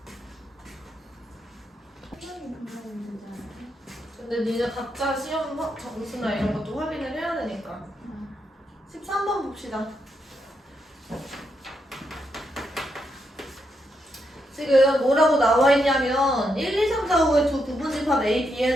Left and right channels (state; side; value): normal; both; correlation 0.81